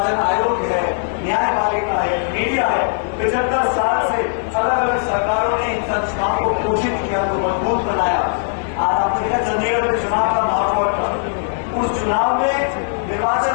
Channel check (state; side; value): silent; right; digital silence